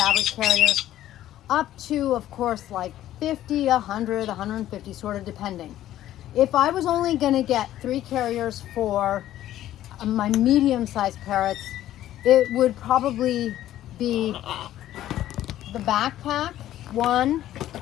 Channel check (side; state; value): right; quieter; 13.1 dB